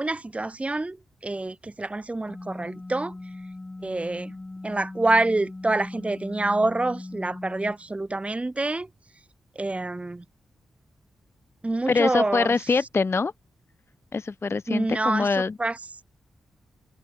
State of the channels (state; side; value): normal; both; correlation 0.87